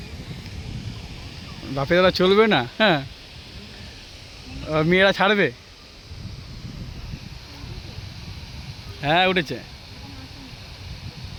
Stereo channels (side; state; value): both; identical; correlation 1.00